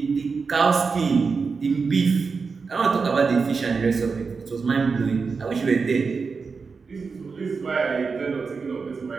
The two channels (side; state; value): left; quieter; 4.9 dB